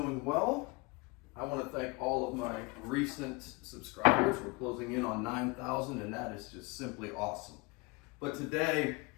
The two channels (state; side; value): quieter; right; 26.6 dB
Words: well. I want to thank all of my recent subscribers. We're closing in on 9,000 and that is just simply awesome. But today,